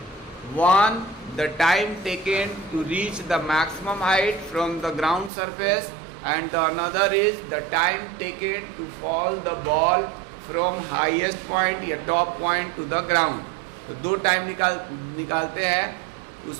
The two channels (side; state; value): left; drops out; at 5.3 s